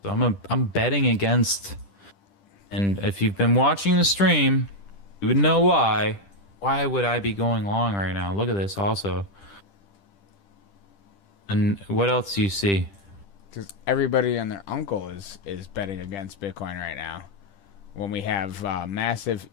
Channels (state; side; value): late; right; 10 ms